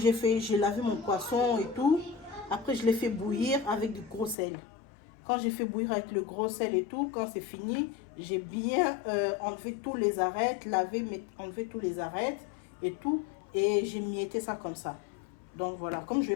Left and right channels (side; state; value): right; drops out; at 4.4 s